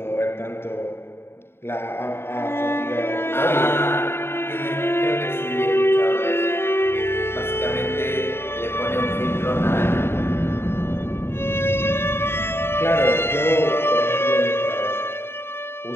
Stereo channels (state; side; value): late; right; 0.11 ms